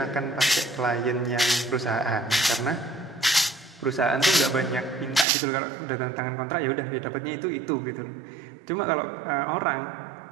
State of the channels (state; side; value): drops out; left; at 5.2 s